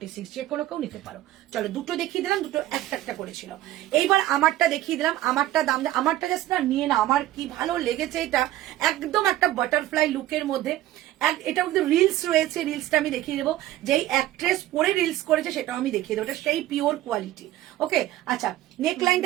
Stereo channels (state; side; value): quieter; left; 14.6 dB